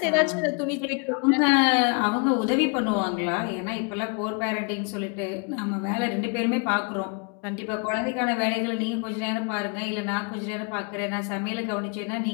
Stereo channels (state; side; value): quieter; right; 36.2 dB